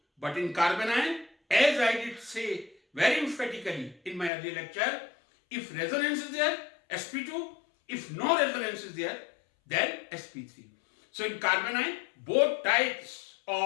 but in carbanion, as I did say very emphatically in my earlier lecture, if resonance is there, sp2. If no resonance is there, then sp3. So in carbanion, both types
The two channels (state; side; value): drops out; right; at 4.3 s